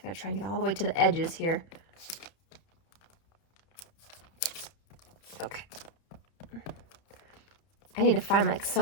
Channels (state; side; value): late; right; 31 ms